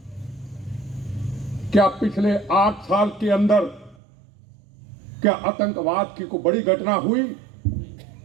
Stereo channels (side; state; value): left; drops out; at 4.0 s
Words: क्या पिछले 8 साल के अंदर क्या आतंकवाद की कोई बड़ी घटना हुई?